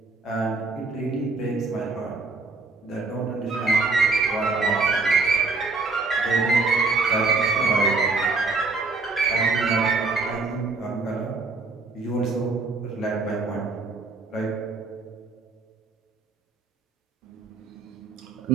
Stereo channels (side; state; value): left; quieter; 3.9 dB